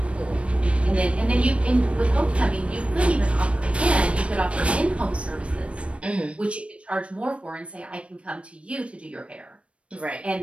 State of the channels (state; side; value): late; left; 0.061 ms